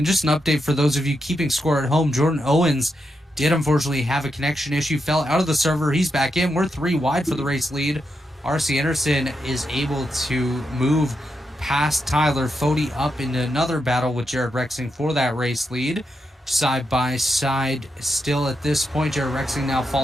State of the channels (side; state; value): both; normal; correlation 0.84